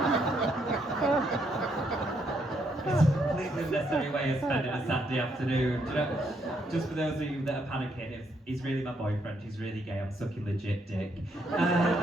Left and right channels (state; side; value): normal; both; correlation 0.74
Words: it's a completely unnecessary way of spending a Saturday afternoon. Do you know, just for those of you that are panicking, he's really my boyfriend, he's really gay, I'm sucking legit dick.